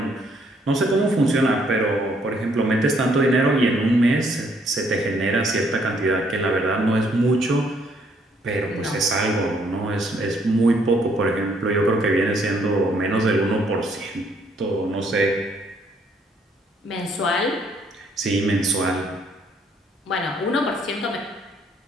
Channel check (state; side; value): normal; both; correlation 0.68